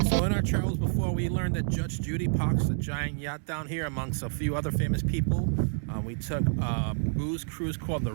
So in our travels before, we learned that Judge Judy parks a giant yacht down here amongst a few other famous people. We took a booze cruise called the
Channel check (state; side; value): silent; left; digital silence